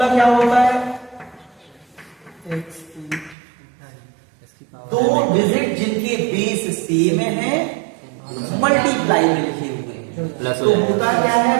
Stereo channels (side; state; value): left; drops out; at 3.4 s